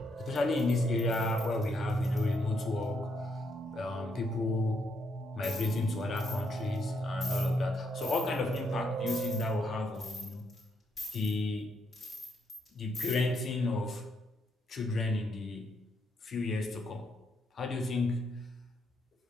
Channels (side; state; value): both; normal; correlation 0.76